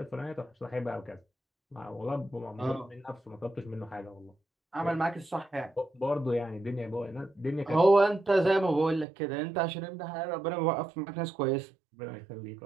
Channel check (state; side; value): drops out; left; at 9.1 s